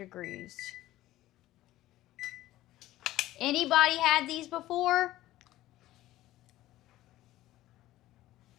Anybody had these before?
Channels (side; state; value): right; quieter; 15.5 dB